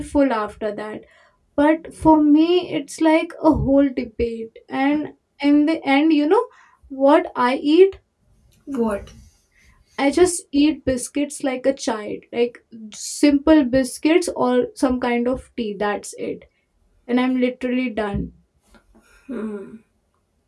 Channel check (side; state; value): both; identical; correlation 1.00